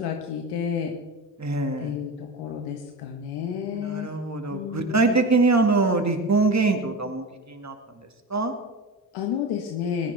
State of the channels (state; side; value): normal; both; correlation 0.27